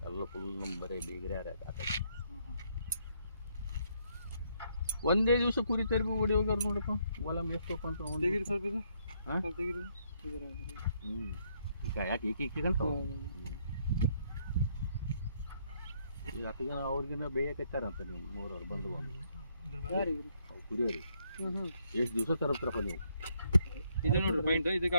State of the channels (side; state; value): both; inverted; correlation -0.72